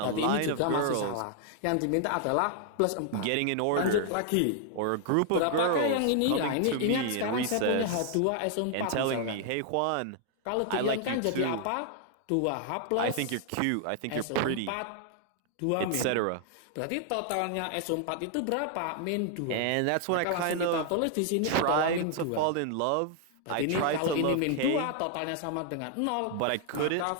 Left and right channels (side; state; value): both; different; correlation 0.00